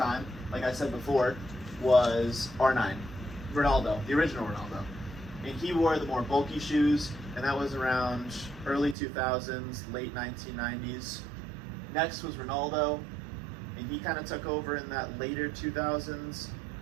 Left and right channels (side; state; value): left; drops out; at 9.0 s